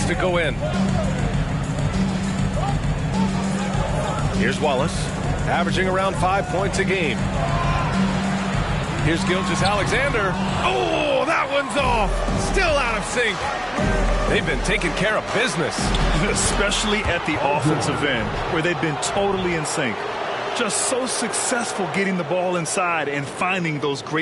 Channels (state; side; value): identical; both; correlation 1.00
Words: to go in. Here's Wallace, averaging around 5 points a game. Here's Gilgeous-Alexander. Oh, that one's off. Still out of sync. They've been taking care of business. Especially at the offensive end, where they've been totally in sync. Just so successful getting the ball inside and finding those